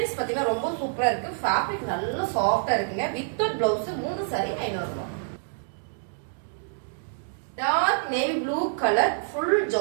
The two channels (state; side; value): silent; left; digital silence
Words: பாத்தீங்கன்னா ரொம்ப சூப்பரா இருக்கு. ஃபேப்ரிக் நல்ல சாஃப்டா இருக்குங்க. வித் பிளவுஸ் 3 சாரி 500 ரூபாய். Dark navy blue colour full